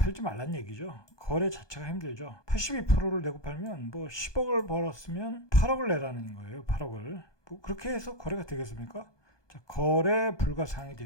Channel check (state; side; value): late; right; 1.2 ms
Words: 말란 얘기죠. 거래 자체가 힘들죠. 82%를 내고 팔면 10억을 벌었으면 8억을 내라는 거예요. 8억을. 그렇게 해서 거래가 되겠습니까? 자, 거래 불가사항이